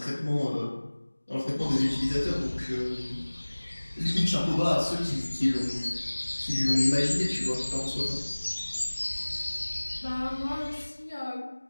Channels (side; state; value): both; inverted; correlation -1.00